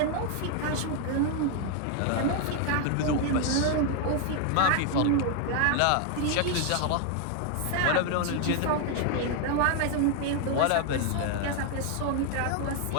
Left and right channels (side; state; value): both; different; correlation 0.00